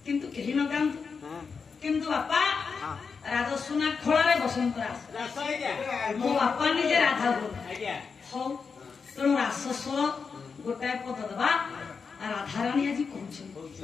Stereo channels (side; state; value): right; quieter; 5.4 dB